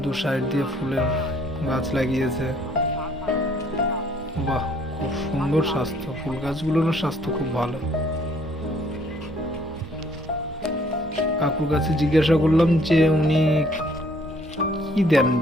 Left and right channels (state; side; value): normal; both; correlation 0.62